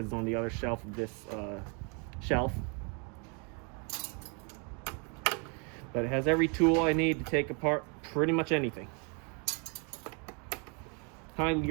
it's on the other shelf of this shelf. But it has every tool I need to take apart pretty much anything.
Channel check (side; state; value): left; quieter; 35.2 dB